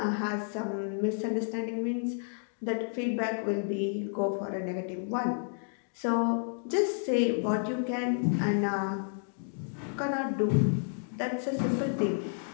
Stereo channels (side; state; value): right; silent; digital silence